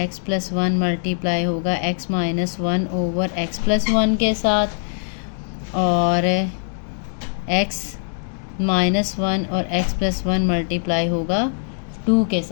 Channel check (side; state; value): right; silent; digital silence